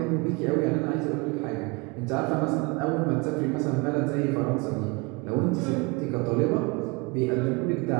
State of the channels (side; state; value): left; quieter; 27.9 dB